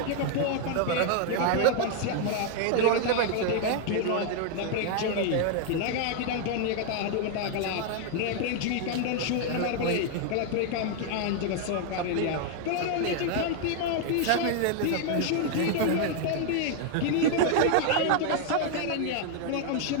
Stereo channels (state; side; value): different; both; correlation 0.00